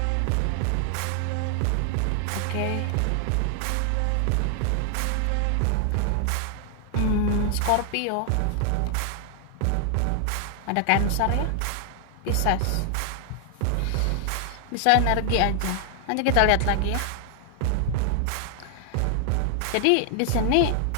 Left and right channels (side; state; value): both; different; correlation 0.00